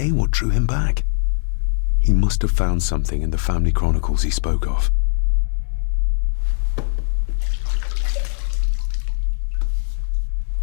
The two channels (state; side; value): silent; right; 65 dB below the other